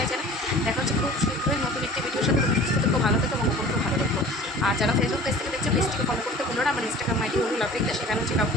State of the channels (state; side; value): normal; both; correlation 0.43